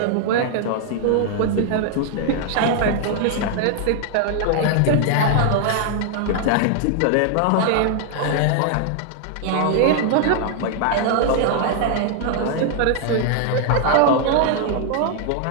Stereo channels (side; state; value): both; different; correlation 0.00